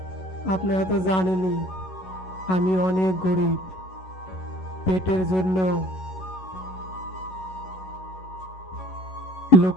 আপনারা তো জানেনই আমি অনেক গরিব, পেটের জন্য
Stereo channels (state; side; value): late; right; 11 ms